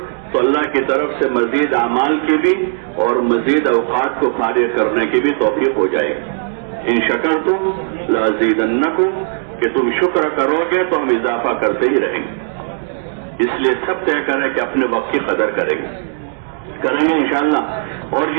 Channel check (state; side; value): silent; left; digital silence